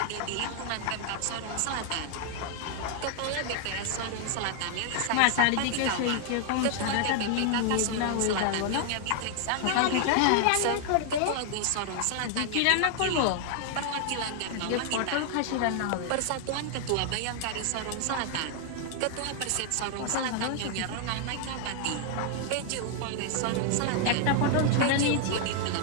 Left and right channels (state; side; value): different; both; correlation 0.00